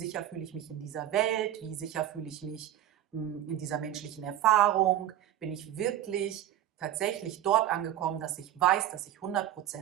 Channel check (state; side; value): quieter; left; 12.0 dB